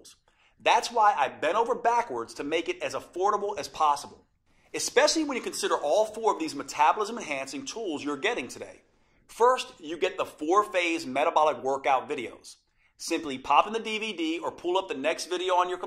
That's why I bent over backwards to make it as affordable as possible, especially when you consider all 4 of these metabolism-enhancing tools you're getting today. First, you get the 4-phase metabolic workout videos. Simply pop in the DVD or pull up the next video on your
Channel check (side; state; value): both; identical; correlation 1.00